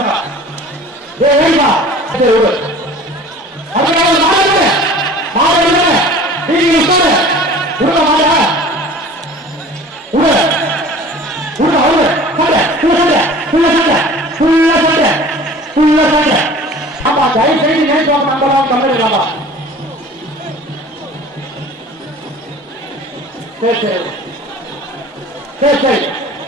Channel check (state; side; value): normal; both; correlation 0.44